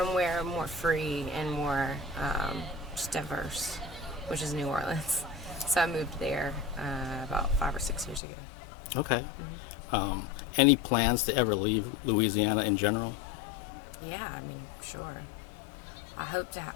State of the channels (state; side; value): drops out; right; at 8.2 s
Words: more free and more just diverse, which is New Orleans. So I moved there about 5 or 6 years ago. Okay. Any plans to ever leave Louisiana in general? Yeah, I mean, sure. I hope to.